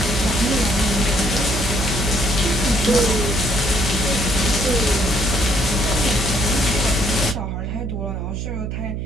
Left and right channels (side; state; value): right; noise; hum, 4 dB below the sound